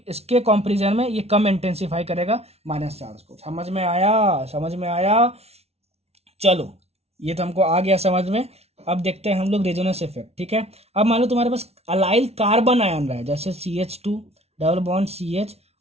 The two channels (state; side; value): late; left; 0.31 ms